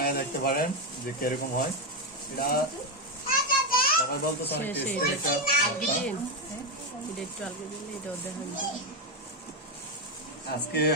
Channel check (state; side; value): normal; both; correlation 0.08